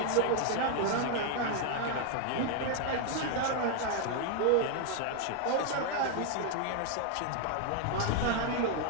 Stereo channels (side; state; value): both; different; correlation 0.00